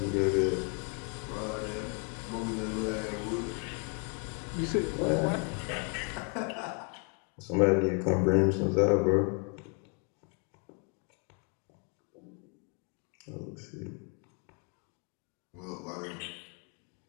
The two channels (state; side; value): quieter; right; 36.4 dB